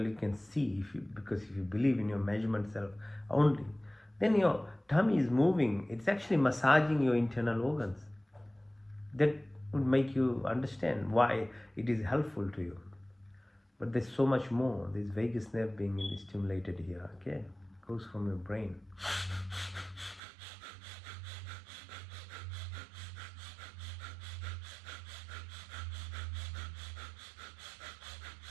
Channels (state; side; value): drops out; left; at 20.2 s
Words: you can see, because if you believe in your measurement self only, then your tummy is moving. It's actually massaging your internal organs. That would make you understand why it is helpful to you. But there's so much more. There's vagus nerve being stimulated here, okay? It goes from your brain.